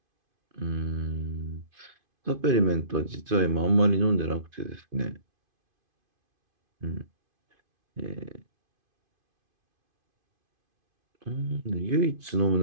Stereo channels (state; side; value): late; left; 2.5 ms